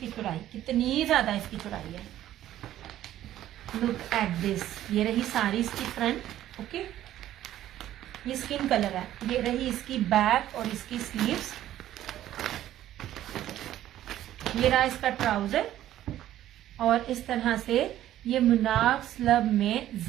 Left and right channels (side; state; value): left; quieter; 12.9 dB